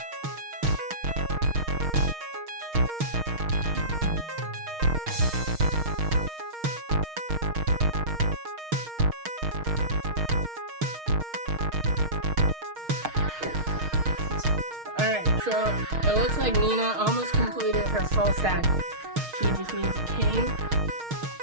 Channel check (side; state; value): left; late; 6.4 ms